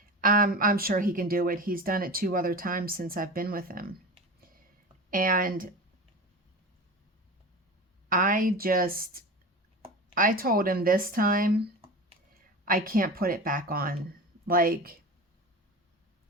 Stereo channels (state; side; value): normal; both; correlation 0.29